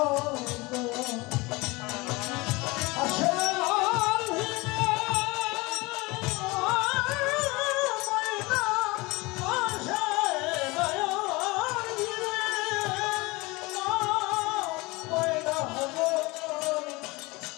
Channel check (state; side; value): quieter; right; 23.5 dB